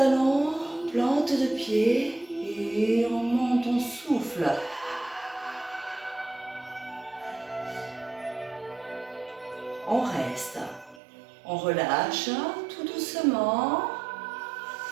plante de pied et on monte, on souffle. On reste, on relâche tout doucement,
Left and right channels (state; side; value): drops out; left; at 11.0 s